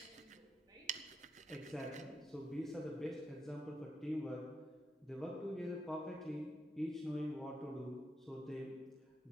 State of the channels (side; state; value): both; normal; correlation 0.84